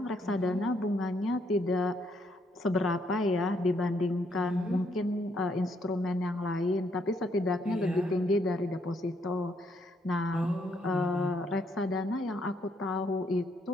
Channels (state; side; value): normal; both; correlation 0.73